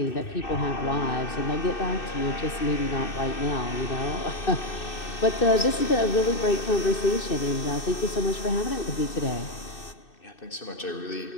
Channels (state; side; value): late; right; 2.6 ms